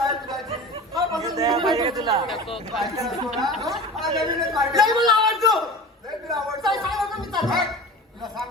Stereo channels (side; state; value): both; normal; correlation 0.35